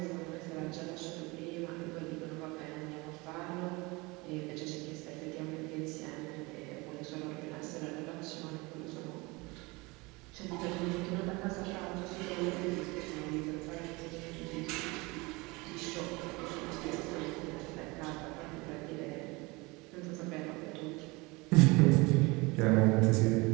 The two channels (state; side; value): quieter; left; 24.8 dB